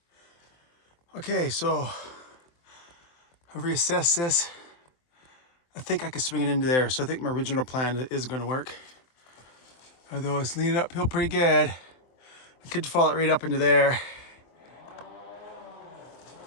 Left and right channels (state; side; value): late; right; 23 ms